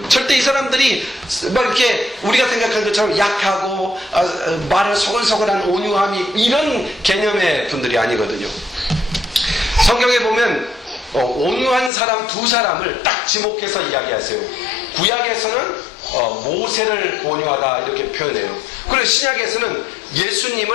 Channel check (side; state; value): right; drops out; at 11.9 s